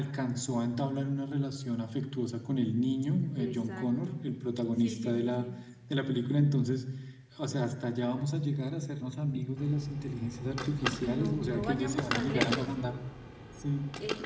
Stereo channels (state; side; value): identical; both; correlation 1.00